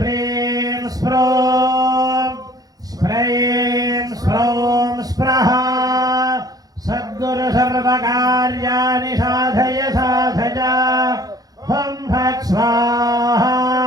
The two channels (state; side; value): late; left; 0.18 ms